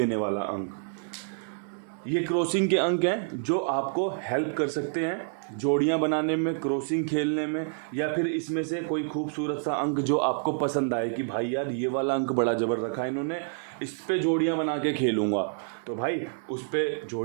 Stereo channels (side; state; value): left; silent; digital silence